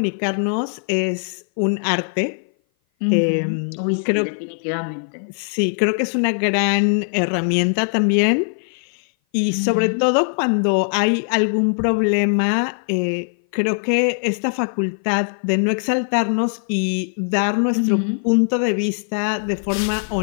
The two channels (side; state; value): right; silent; 57 dB below the other